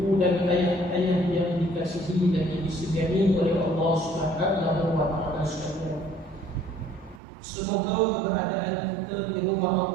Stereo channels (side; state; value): left; drops out; at 7.2 s